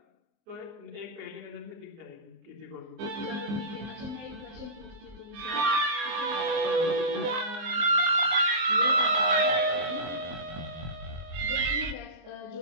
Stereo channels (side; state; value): left; late; 24 ms